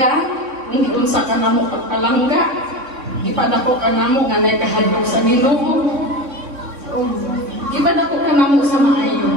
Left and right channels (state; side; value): late; left; 3.6 ms